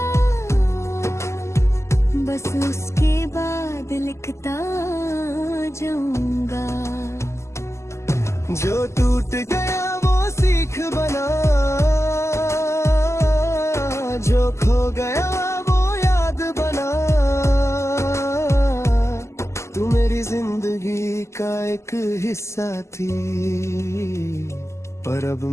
बस उसके बाद लिखता जाऊंगा। जो टूट गया वो सीख बना, जो खो गया वो याद बना। तू मेरी जिंदगी का एक हिस्सा थी, पर अब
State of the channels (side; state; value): right; late; 0.13 ms